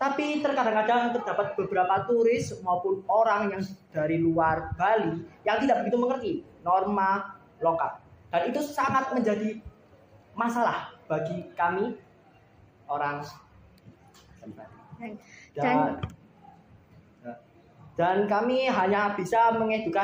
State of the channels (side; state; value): both; identical; correlation 1.00